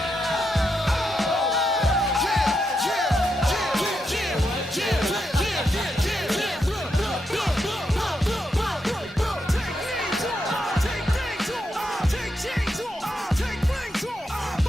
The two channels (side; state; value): both; normal; correlation 0.83